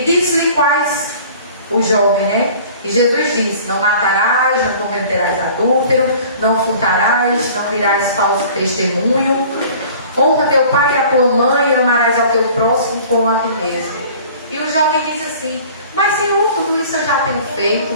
quais? O jovem, né? E Jesus disse: não matarás, não cometerás adúltero, não furtarás, não dirás falso testemunho, honra teu pai e a tua mãe, e amarás ao teu próximo como a ti mesmo. E o jovem diz assim: mas Senhor, tudo isso eu já tenho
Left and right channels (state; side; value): inverted; both; correlation -0.47